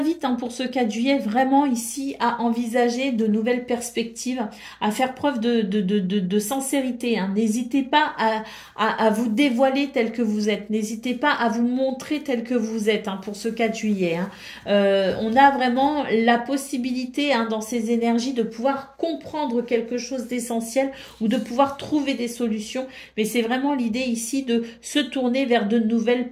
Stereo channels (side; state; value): both; identical; correlation 1.00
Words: pour ce 4 juillet vraiment ici à envisager de nouvelles perspectives, à faire preuve de sincérité. Hein. N'hésitez pas à vous dévoiler tel que vous êtes. N'hésitez pas à vous montrer tel que vous êtes pour ce 4 juillet. Hein. On a vraiment la possibilité dans ces énergies de pouvoir comprendre quelque chose d'essentiel ou de pouvoir trouver des solutions. Mais c'est vraiment l'idée ici de se tourner vers de nouvelles